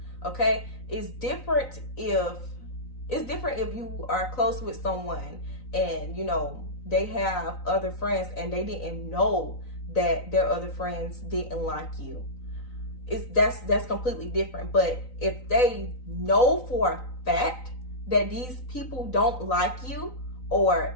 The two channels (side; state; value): right; late; 3.9 ms